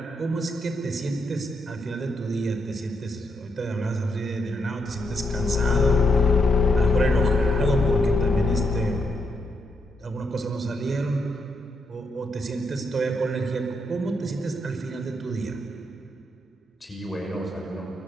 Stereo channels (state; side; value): normal; both; correlation 0.79